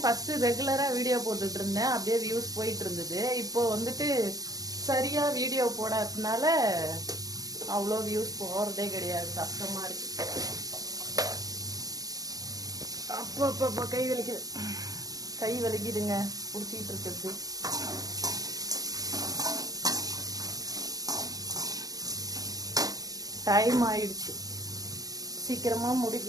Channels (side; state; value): left; late; 0.18 ms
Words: ஃபஸ்ட்டு ரெகுலராக வீடியோ போட்டுட்டு இருந்தேன், அப்படியே வியூஸ் போயிட்டு இருந்தது. இப்போ வந்துட்டு சரியாக வீடியோ போடாததுனால அவ்வளோ வியூஸ் போகிறதே கிடையாது, கஷ்டமாக இருக்கு. அப்போ கை வலிக்குதுங்க பிடிச்சிக்கிட்டு இருக்கிறது. டைம் ஆயிடுச்சு, சீக்கிரமாக